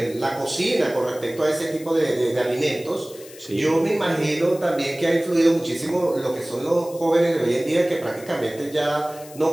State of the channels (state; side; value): noise; left; hiss, 19 dB below the sound